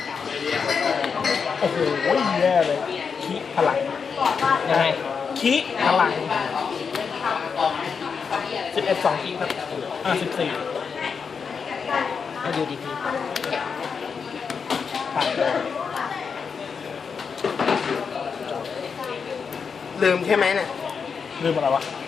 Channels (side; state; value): right; quieter; 5.9 dB